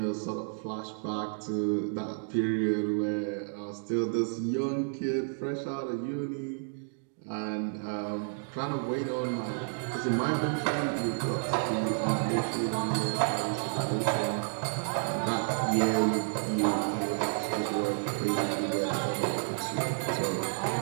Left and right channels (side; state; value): left; silent; digital silence